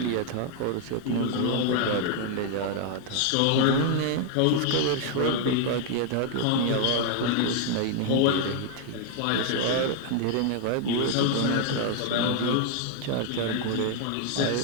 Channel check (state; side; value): different; both; correlation 0.00